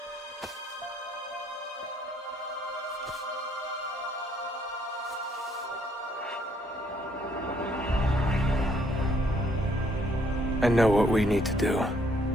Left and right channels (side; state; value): both; normal; correlation 0.67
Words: I know what we need to do.